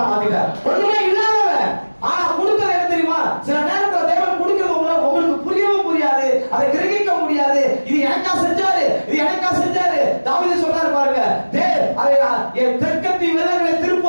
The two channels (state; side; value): inverted; both; correlation -1.00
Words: மாத்திட்டார். ஒண்ணுமே இல்லாதவன் ஆனா கொடுக்கறது என்ன தெரியுமா? சில நேரத்துல தேவன் கொடுக்கிறது உங்களுக்கு புரியவும் புரியாது, அதை கிரகிக்க முடியாது. இது எனக்கா செஞ்சாரு, இது எனக்கா செஞ்சாரு. தாவீது சொல்றாரு பாருங்க, என் தெற்கத்தி விலங்குகளை